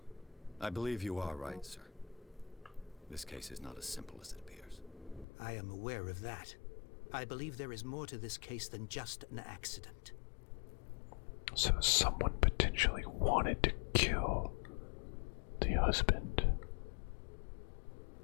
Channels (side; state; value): right; drops out; at 5.2 s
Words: I believe you are right, sir. This case is not as simple as it appears. I am aware of that. I believe there is more to this case than just an accident. So someone potentially wanted to kill the husband.